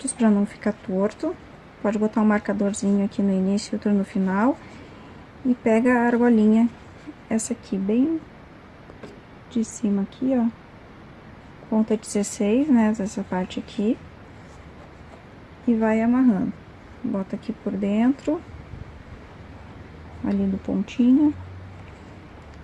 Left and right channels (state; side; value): identical; both; correlation 1.00